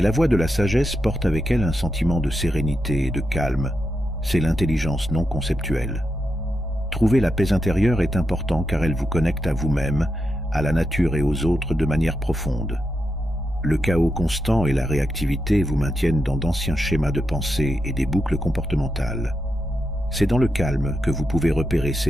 la voix de la sagesse porte avec elle un sentiment de sérénité et de calme. C'est l'intelligence non conceptuelle. Trouver la paix intérieure est important car elle vous connecte à vous-même, à la nature et aux autres de manière profonde. Le chaos constant et la réactivité vous maintiennent dans d'anciens schémas de pensée et des boucles comportementales. C'est dans le calme que vous pouvez repérer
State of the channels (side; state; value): both; normal; correlation 0.86